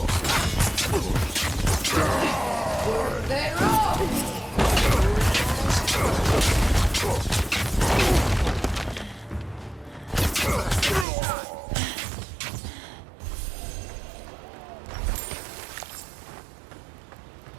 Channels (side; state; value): left; drops out; at 11.1 s